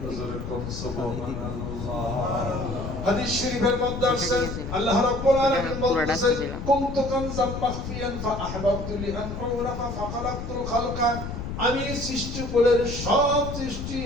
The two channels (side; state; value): left; noise; rumble, 6 dB below the sound